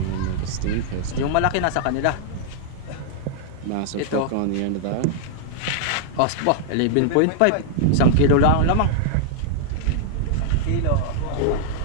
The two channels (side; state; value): both; different; correlation -0.01